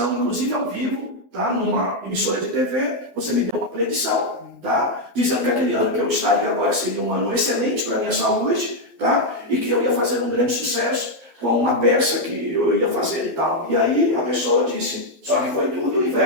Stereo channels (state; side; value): late; left; 12 ms